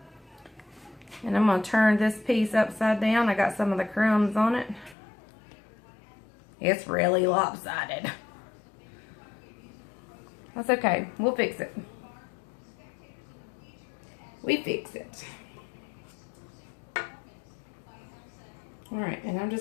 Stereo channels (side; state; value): right; drops out; at 5.0 s